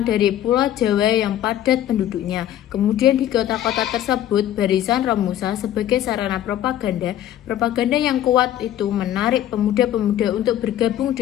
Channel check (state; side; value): quieter; right; 12.0 dB